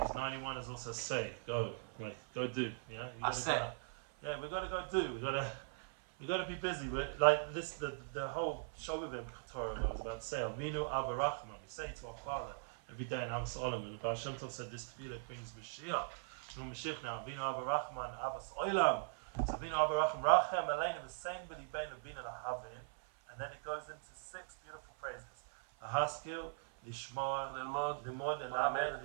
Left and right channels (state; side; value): silent; left; 51 dB below the other